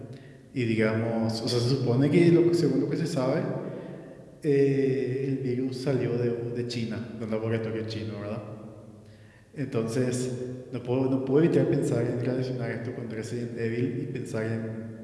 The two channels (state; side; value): identical; both; correlation 1.00